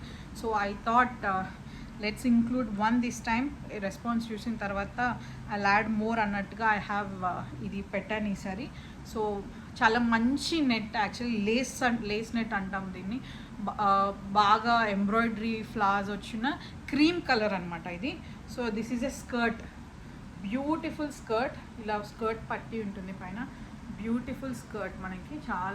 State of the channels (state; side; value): identical; both; correlation 1.00